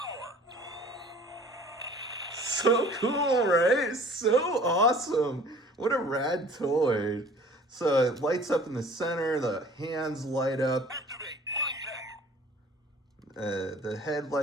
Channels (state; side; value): normal; both; correlation 0.49